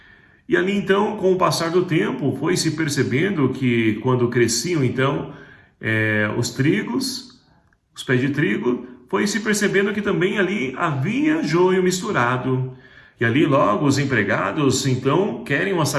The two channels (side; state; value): both; identical; correlation 1.00